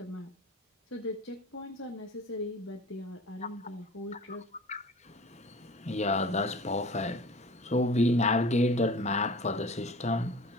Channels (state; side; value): normal; both; correlation 0.41